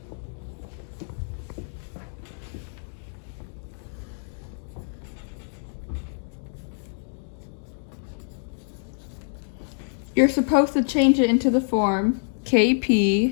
You're supposed to change it into the form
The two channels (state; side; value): silent; right; digital silence